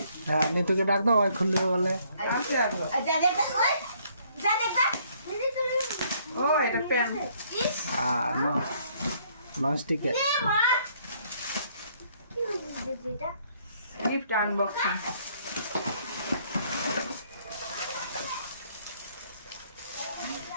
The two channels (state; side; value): inverted; both; correlation -0.65